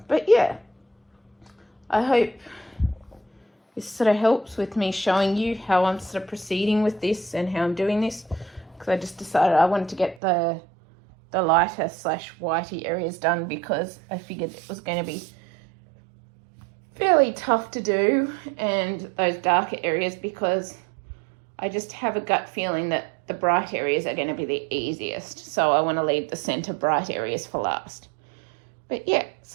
But yeah, I hope this sort of helps with me showing you how I'm sort of proceeding with this and how I'm doing this, because I just decided I wanted to get the lighter / whitey areas done, because I figured it was going to be fairly tough to do, and those darker areas, because I just have a gut feeling that the bright areas are going to be the easiest. So I want to leave the centre bright areas for last. But yeah,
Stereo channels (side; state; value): left; drops out; at 10.2 s